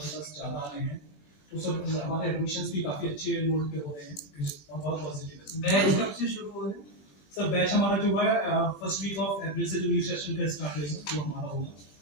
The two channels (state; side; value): late; right; 20 ms